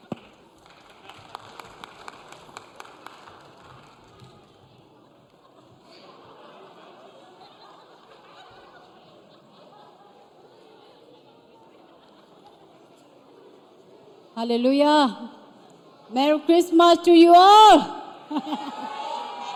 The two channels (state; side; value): identical; both; correlation 1.00